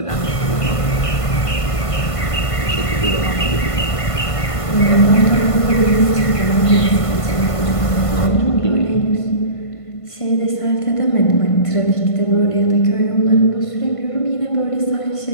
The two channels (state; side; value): late; right; 1.5 ms